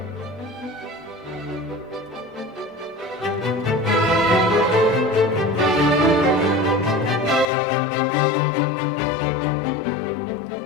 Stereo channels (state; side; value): drops out; right; at 7.5 s